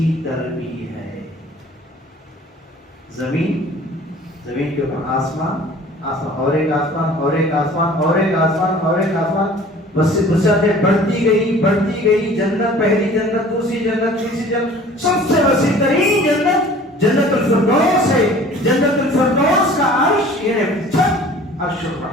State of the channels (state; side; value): normal; both; correlation 0.48